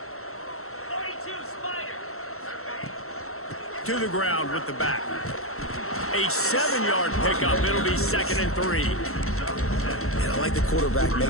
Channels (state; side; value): late; right; 0.63 ms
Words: To the ground with the back. A 7-yard pickup. It'll be 2nd and 3. And I like the quarterback